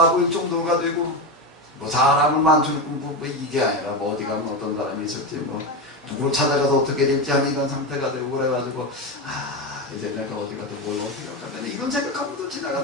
보일 정도가 되고, 뭐 사람을 많추는 뭐 이게 아니라 뭐 어디 가면 어떤 사람이 있었지 뭐 누구를 찾아가서 어떻게 될지 하는 이런 상태가 되고 그래가지고 이제 내가 어디 가도 뭘 어떻게 할까 이런 생각하면서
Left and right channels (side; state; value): both; normal; correlation 0.16